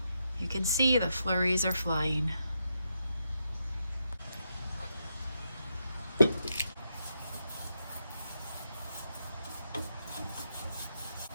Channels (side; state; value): both; inverted; correlation -0.83